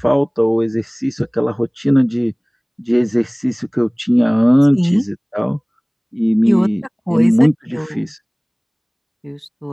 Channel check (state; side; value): identical; both; correlation 1.00